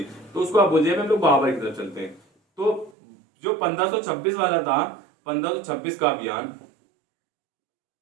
तो उसको आप बोलिए हम लोग बाबर की तरफ चलते हैं। तो जो 1526 वाला था, 1526 का अभियान,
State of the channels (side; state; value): left; drops out; at 3.0 s